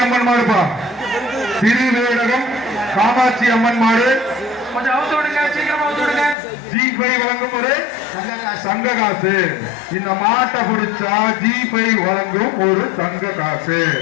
அம்மன் மாடுப்பா. திருவேடகம் காமாட்சி அம்மன் மாடு. கொஞ்சம் அவுத்து விடுங்க சீக்கிரமா அவுத்து விடுங்க. G5 வழங்கும் ஒரு தங்க காசு. இந்த மாட்டை பிடிச்சா G5 வழங்கும் ஒரு தங்க காசு.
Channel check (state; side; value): drops out; right; at 6.4 s